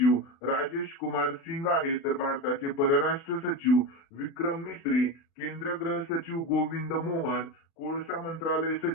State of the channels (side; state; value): right; late; 36 ms